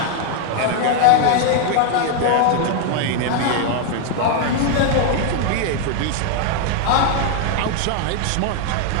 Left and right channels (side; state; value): both; different; correlation 0.00